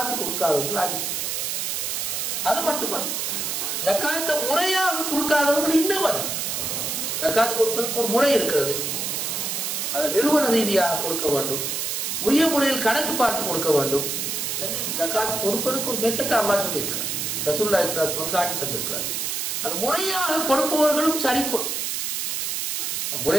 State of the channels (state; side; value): noise; right; hiss, 1 dB below the sound